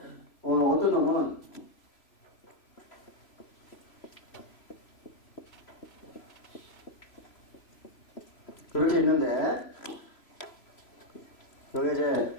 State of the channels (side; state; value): right; late; 3.0 ms